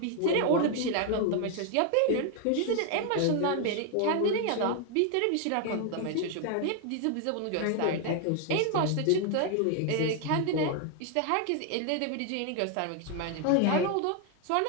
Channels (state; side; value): different; both; correlation 0.00